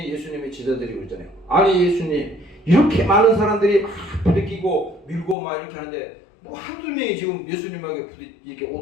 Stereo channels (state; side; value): drops out; right; at 5.4 s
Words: 예수님이 제자들이 그러잖아요. 아니 예수님, 이렇게 많은 사람들이 막 부딪히고 밀고 막 이렇게 하는데 뭐 한두 명이 지금 예수님에게 이렇게